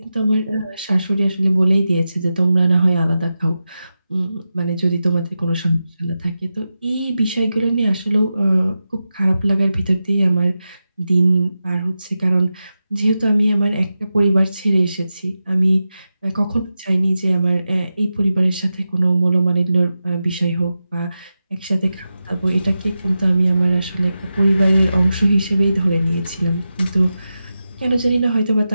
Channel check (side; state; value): both; inverted; correlation -0.91